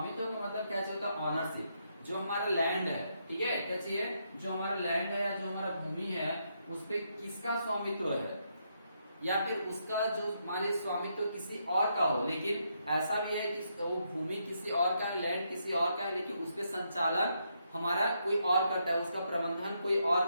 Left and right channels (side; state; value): both; inverted; correlation -0.78